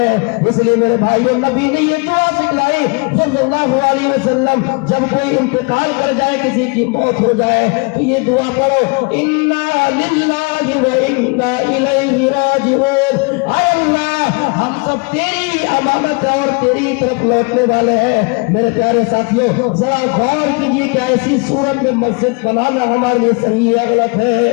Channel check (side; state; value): right; quieter; 31.2 dB